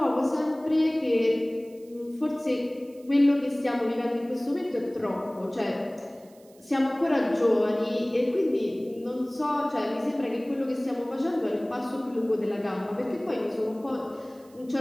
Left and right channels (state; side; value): noise; right; hiss, 29 dB below the sound